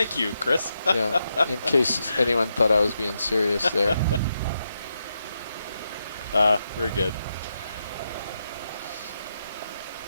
you, Chris. Yeah, in case anyone thought I was being serious there. Very good.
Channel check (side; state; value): both; inverted; correlation -0.84